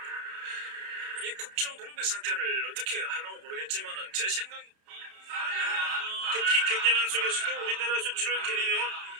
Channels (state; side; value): late; left; 31 ms